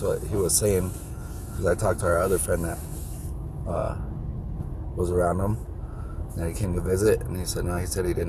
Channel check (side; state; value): both; identical; correlation 1.00